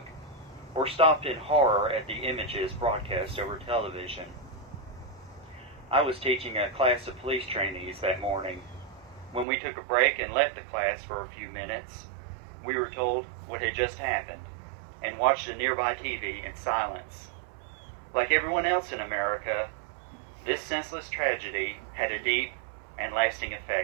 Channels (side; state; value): left; drops out; at 9.5 s